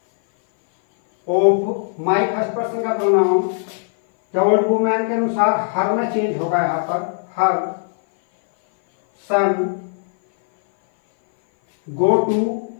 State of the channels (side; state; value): right; silent; 58 dB below the other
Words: of my first person का प्रोनाउन द ओल्ड वुमन के अनुसार हर में चेंज होगा, यहाँ पर हर सन गो टू,